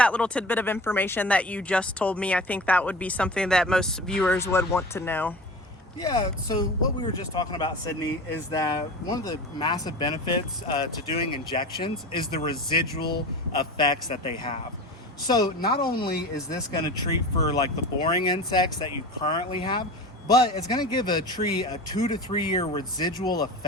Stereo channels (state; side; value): normal; both; correlation 0.33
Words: little tidbit of information that you just told me. I think that would be something that most viewers would want to know. Yeah, so what we were just talking about, Sydney, is that one of the massive benefits to doing injections is the residual effects that they have. So not only is this going to treat for like the boring insects that you currently have, but it's going to give a tree a 2 to 3 year residual